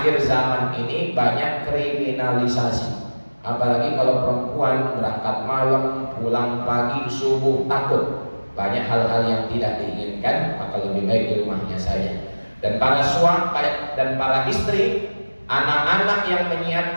zaman ini banyak kriminalisasi, apalagi kalau perempuan berangkat malam, pulang pagi, subuh, takut banyak hal-hal yang tidak diinginkan, maka lebih baik di rumahnya saja. Dan para suami dan para istri, anak-anak yang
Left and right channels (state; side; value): inverted; both; correlation -1.00